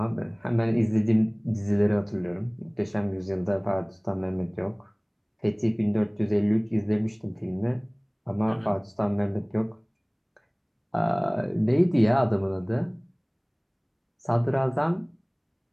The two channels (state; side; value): identical; both; correlation 1.00